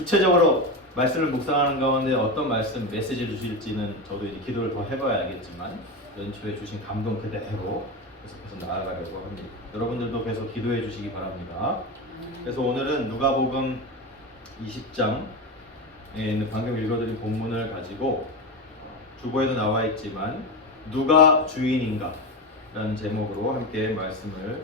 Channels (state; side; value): normal; both; correlation 0.18